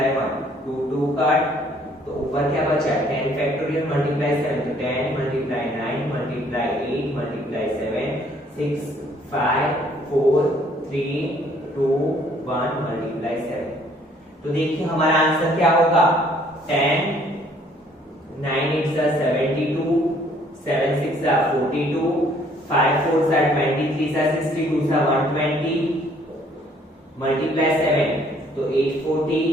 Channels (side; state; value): both; normal; correlation 0.61